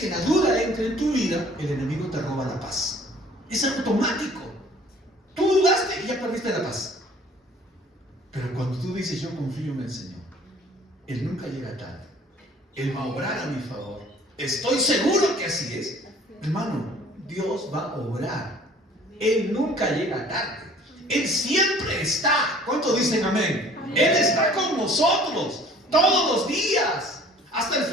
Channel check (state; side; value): normal; both; correlation 0.52